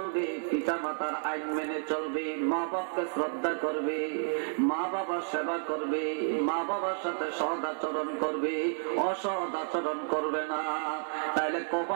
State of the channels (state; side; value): silent; left; 57 dB below the other